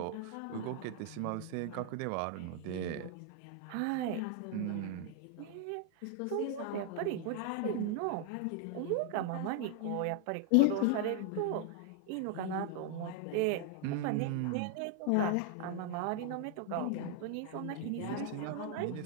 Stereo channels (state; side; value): different; both; correlation 0.00